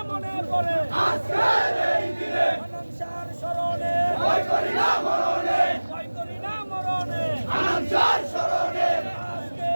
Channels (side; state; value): both; inverted; correlation -1.00